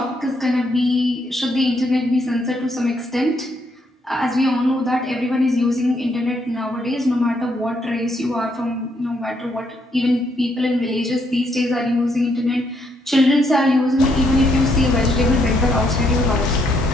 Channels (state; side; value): normal; both; correlation 0.73